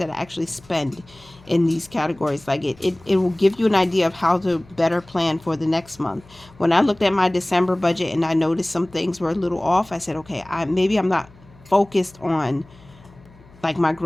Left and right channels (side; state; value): left; noise; hum, 25 dB below the sound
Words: I actually spend in these categories? Like it will give you an idea of how to better plan for the next month. When I looked at my December budget and I noticed some things were a little off, I said, okay, maybe I'm not focused on like my